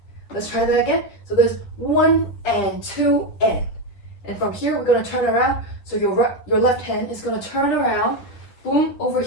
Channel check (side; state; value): right; late; 9.9 ms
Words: Let's try that again. So there's 1 and 2 N. And from here, we're gonna turn around. So your left hand is gonna turn around, boom, over